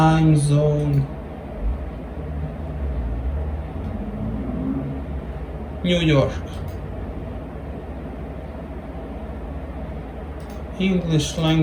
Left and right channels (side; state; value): both; identical; correlation 1.00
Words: zone, New York. English